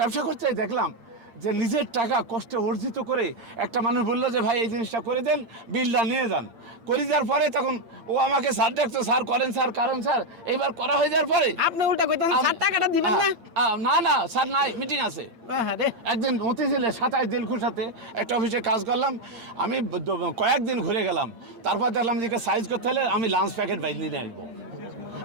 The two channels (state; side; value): late; left; 8.8 ms